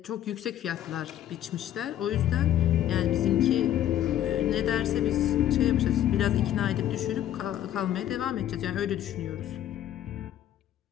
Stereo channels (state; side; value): quieter; right; 11.8 dB